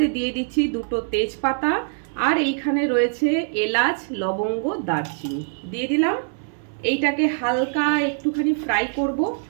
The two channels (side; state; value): left; silent; digital silence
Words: দিয়ে দিচ্ছি 2টো তেজপাতা, আর এইখানে রয়েছে এলাচ, লবঙ্গ, দারচিনি দিয়ে দিলাম। এইটাকে হালকা একটুখানি ফ্রাই করব,